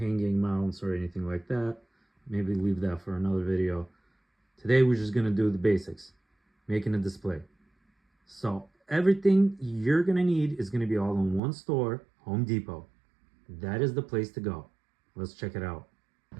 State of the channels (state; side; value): drops out; left; at 11.4 s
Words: mounts or anything like that. Maybe leave that for another video. Today we're just going to do the basics, making a display. So everything you're going to need is going to be all in one store, Home Depot. That is the place to go. Let's check it out.